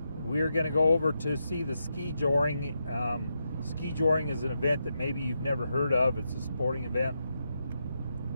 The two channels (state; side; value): inverted; both; correlation -0.85